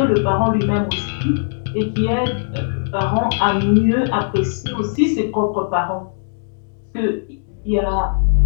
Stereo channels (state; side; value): silent; right; digital silence